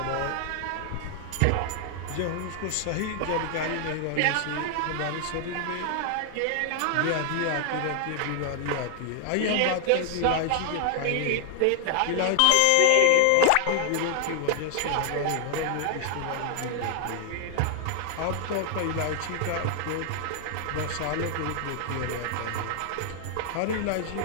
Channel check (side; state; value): both; different; correlation 0.00